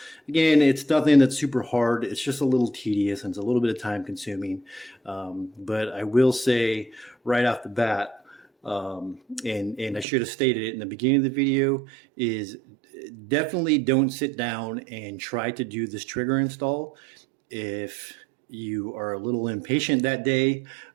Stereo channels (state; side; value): drops out; left; at 10.1 s